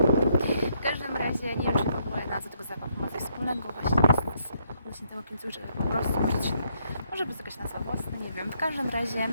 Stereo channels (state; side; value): inverted; both; correlation -0.72